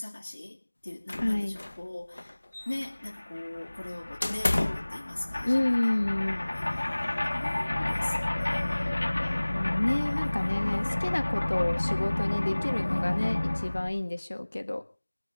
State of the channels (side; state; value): both; inverted; correlation -1.00